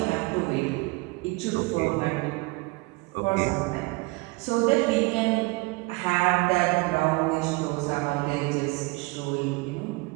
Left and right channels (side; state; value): left; quieter; 25.3 dB